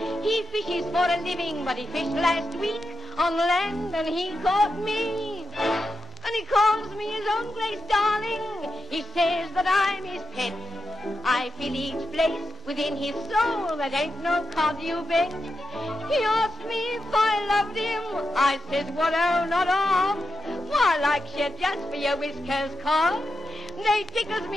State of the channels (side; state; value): both; normal; correlation 0.88